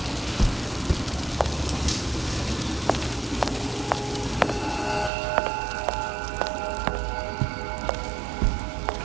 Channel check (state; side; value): drops out; left; at 5.1 s